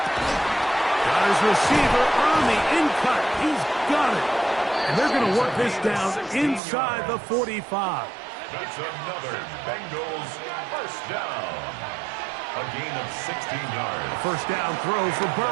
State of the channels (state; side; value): drops out; left; at 6.6 s